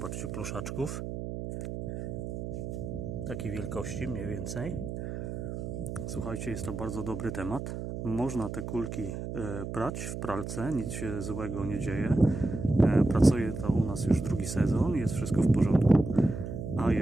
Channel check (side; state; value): right; noise; hum, 6 dB below the sound